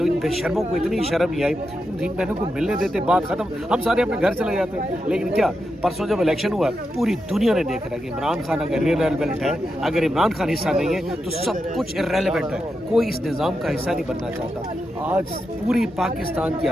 इन बेशर्मों को इतनी शर्म नहीं आई, इन बहनों को मिलने देते, बात खत्म, हम सारे अपने घर चले जाते। लेकिन क्या परसों जब इलेक्शन हुआ पूरी दुनिया ने देख रहा है कि इमरान खान अगर इररेलेवेंट है, अगर इमरान खान हिस्सा नहीं है तो सब कुछ इररेलेवेंट है। कोई इस निज़ाम का हिस्सा नहीं बनना चाहता। आज पूरी पाकिस्तान की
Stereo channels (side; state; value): both; normal; correlation 0.86